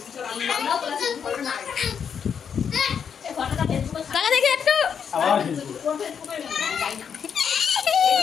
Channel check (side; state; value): right; quieter; 7.3 dB